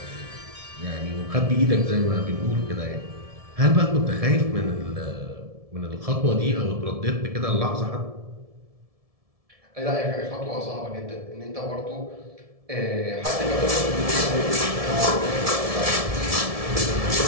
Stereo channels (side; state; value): left; late; 1.7 ms